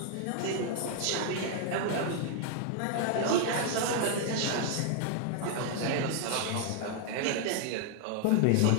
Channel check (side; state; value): both; different; correlation 0.00